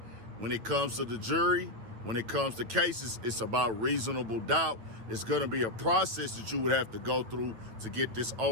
when it comes to the jury, when it comes to cases, it's about reasonable doubt. It's going to be a process that you would have to go through to get this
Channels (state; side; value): late; left; 9.0 ms